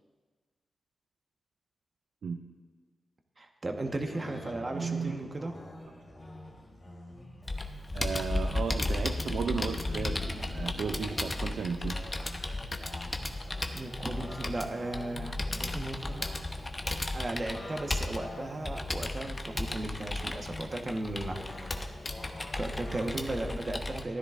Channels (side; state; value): both; normal; correlation 0.91